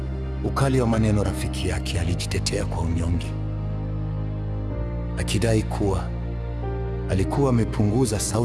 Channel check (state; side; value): identical; both; correlation 1.00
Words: ukali wa maneno. Rafiki yake alijitetea kwa unyonge, akidai kuwa alikuwa amepunguza